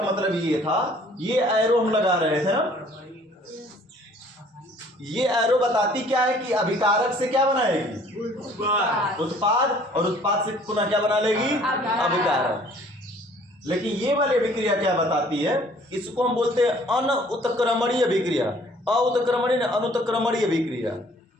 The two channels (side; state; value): both; normal; correlation 0.56